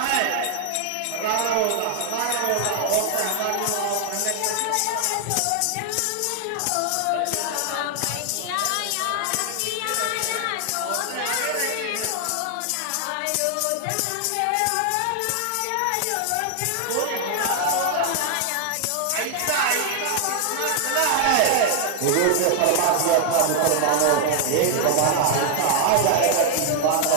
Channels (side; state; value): both; different; correlation 0.00